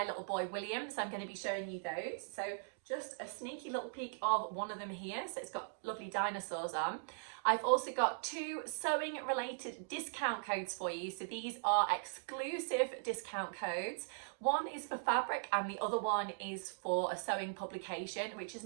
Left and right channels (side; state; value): left; silent; digital silence